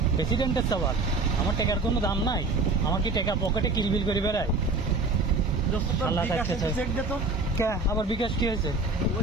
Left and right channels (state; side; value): quieter; left; 3.5 dB